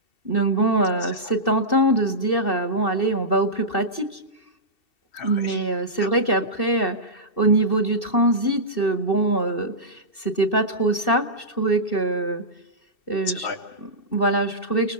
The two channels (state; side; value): late; right; 2.7 ms